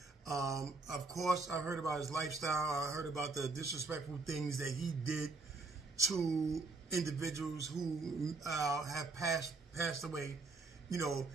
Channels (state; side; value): quieter; left; 3.8 dB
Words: Of course, I heard about his lifestyle. I heard about the disrespectful things that he did to individuals who have passed away,